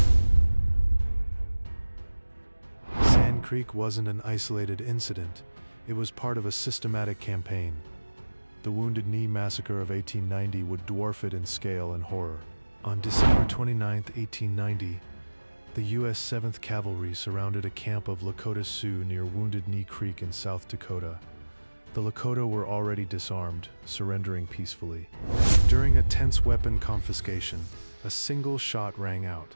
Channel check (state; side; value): inverted; both; correlation -1.00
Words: Sand Creek wasn't an isolated incident, it was part of a systematic campaign. The Wounded Knee Massacre of 1890 would dwarf it in scale and horror. On December 29, 1890, the U.S. 7th Cavalry surrounded a camp of Lakota Sioux near Wounded Knee Creek in South Dakota. The Lakota were already disarmed, surrendering peacefully. During a tense weapon confiscation, a single shot rang out.